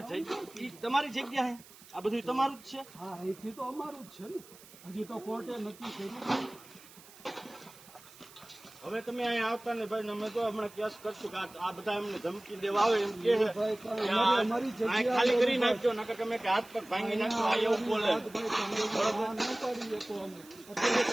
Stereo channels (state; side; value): noise; right; hiss, 21 dB below the sound